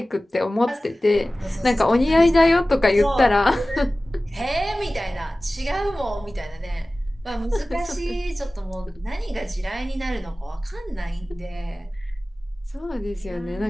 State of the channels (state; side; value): normal; both; correlation 0.97